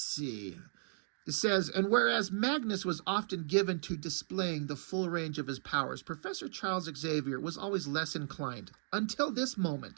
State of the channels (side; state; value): left; silent; digital silence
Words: It says, and whereas Magnus was often given to displaying the full range of his powers, Professor Charles Xavier was always less inclined. Until this